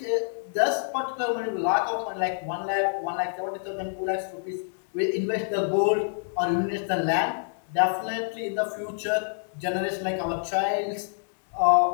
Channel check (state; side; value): silent; right; digital silence